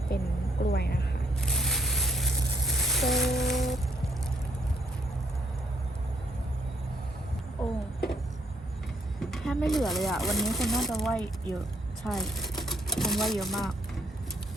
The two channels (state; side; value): normal; both; correlation 0.71